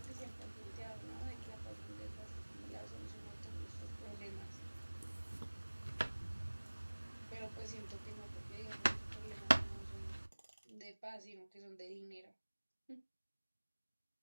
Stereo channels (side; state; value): both; inverted; correlation -1.00